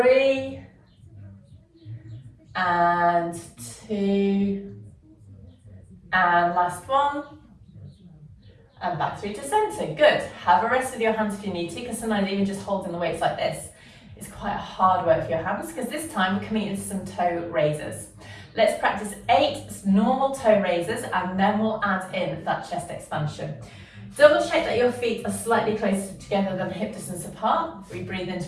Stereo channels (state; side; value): identical; both; correlation 1.00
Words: and 2 and last one. And back through to centre. Good. Have a rest with your hands if you need to, because sometimes even just holding the weights like this is quite hard work for your hands, because this time we're coming into some toe raises. Let's practice 8 normal toe raises, and then we'll add in that chest expansion. Double check that your feet are slightly closer together than hip distance apart. We breathe in to